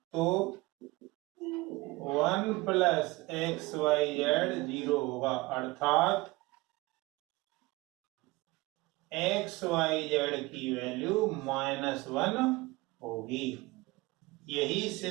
तो 1 प्लस एक्स वाई जेड 0 होगा, अर्थात एक्स वाई जेड की वैल्यू -1 होगी। यही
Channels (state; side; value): quieter; left; 22.0 dB